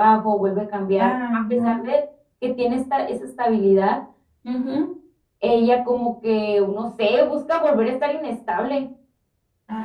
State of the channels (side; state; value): both; identical; correlation 1.00